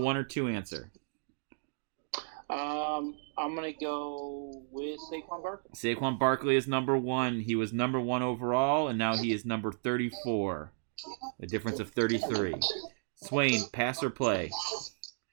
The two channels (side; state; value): left; silent; digital silence